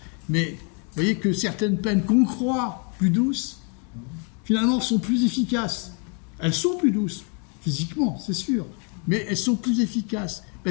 Mais vous voyez que certaines peines qu'on croit plus douces, finalement, sont plus efficaces. Elles sont plus douces, physiquement, c'est sûr, mais elles sont plus efficaces,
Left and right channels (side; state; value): right; quieter; 37.7 dB